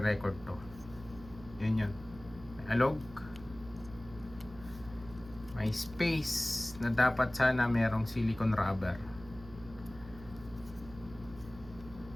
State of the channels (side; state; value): right; noise; hum, 17 dB below the sound